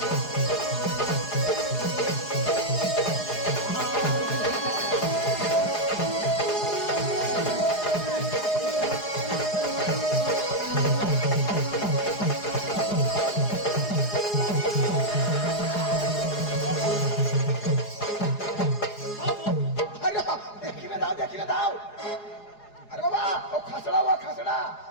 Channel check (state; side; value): late; right; 4.8 ms